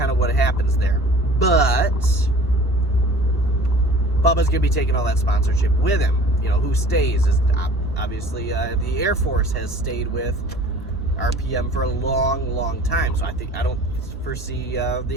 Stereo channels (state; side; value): normal; both; correlation 0.46